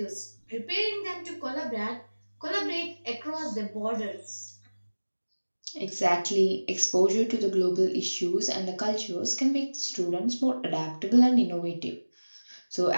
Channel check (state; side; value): inverted; both; correlation -1.00